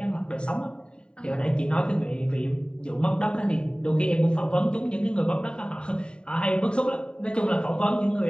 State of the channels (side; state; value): right; late; 0.050 ms